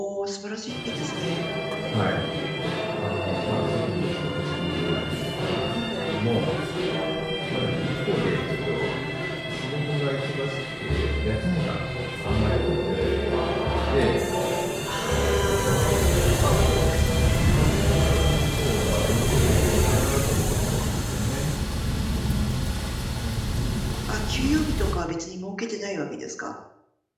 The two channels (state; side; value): identical; both; correlation 1.00